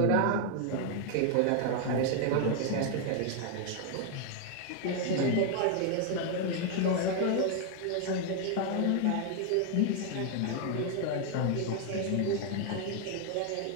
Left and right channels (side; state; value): both; different; correlation 0.00